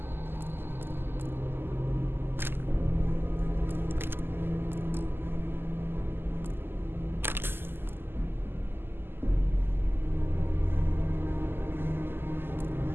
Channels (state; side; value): late; left; 0.10 ms